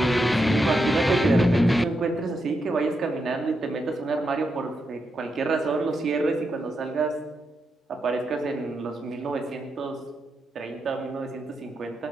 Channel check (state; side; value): normal; both; correlation 0.84